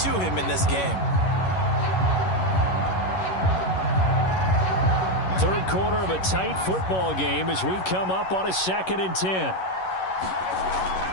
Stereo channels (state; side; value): late; right; 11 ms